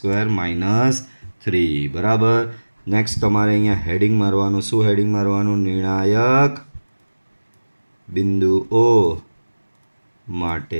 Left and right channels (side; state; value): both; inverted; correlation -1.00